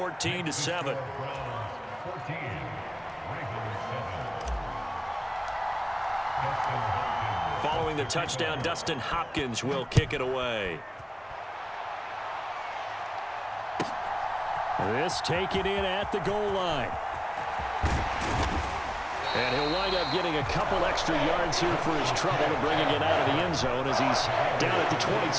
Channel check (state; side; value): identical; both; correlation 1.00